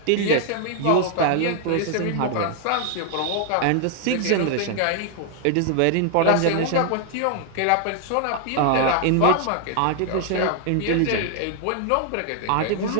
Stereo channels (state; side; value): different; both; correlation 0.00